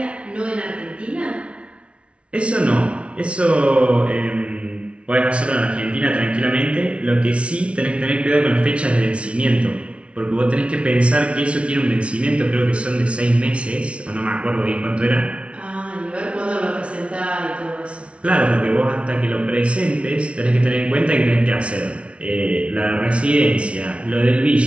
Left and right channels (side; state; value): left; late; 0.060 ms